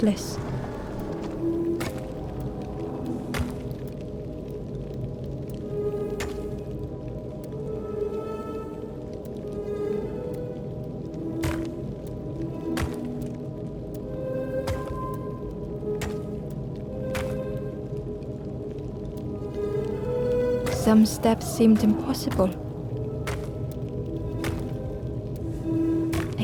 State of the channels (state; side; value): identical; both; correlation 1.00